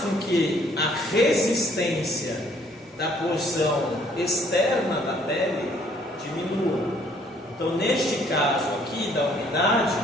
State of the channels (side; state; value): both; normal; correlation 0.62